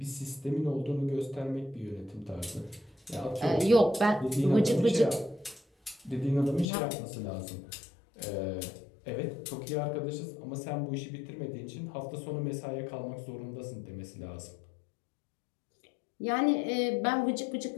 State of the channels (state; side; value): drops out; right; at 6.7 s